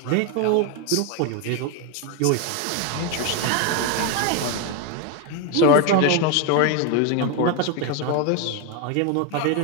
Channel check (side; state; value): both; different; correlation 0.02